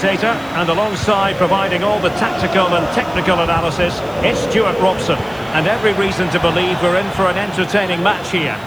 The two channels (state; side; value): noise; right; hiss, 26 dB below the sound